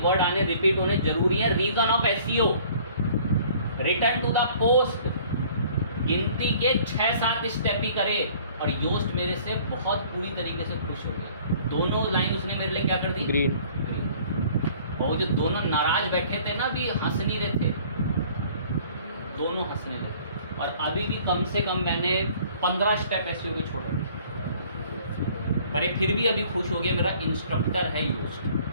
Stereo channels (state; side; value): inverted; both; correlation -0.53